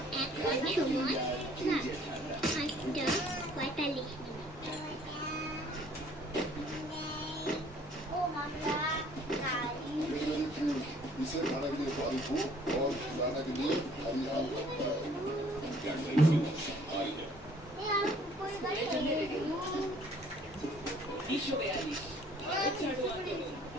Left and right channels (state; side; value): normal; both; correlation 0.57